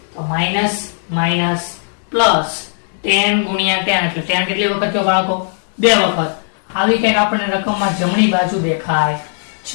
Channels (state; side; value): silent; right; digital silence